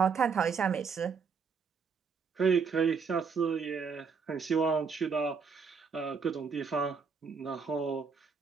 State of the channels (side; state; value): left; quieter; 5.6 dB